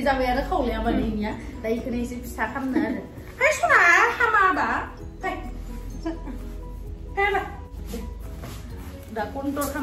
जाबाय आरो खावलाया माने इनिया दा इखौनो एसे फिसा खालामनो आरो हाय सना हामाबा दा कन्ट्रल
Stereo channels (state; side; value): identical; both; correlation 1.00